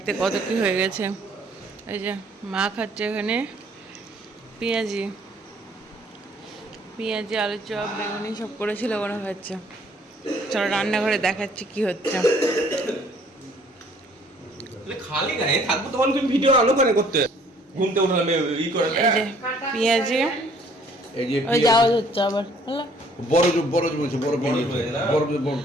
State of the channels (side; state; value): both; normal; correlation 0.59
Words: কত কি হয়ে গেছে। এই যে মা খাচ্ছে এখানে পেঁয়াজি, পেঁয়াজি আলুর চপ বেগুনি সব করেছিল ওরা খাচ্ছে। চলো রান্নাঘরে দেখাচ্ছি কি হচ্ছে। খালি গায়ে থাকবো তখন তুমি ভিডিও আলো করে করতে ঘুমতে উঠলাম ই করে এই যে পেঁয়াজি, এই যে ওই যাওয়া হচ্ছে আবার হলো বড় বড় বলছে বড় পেঁয়াজ বড় বড়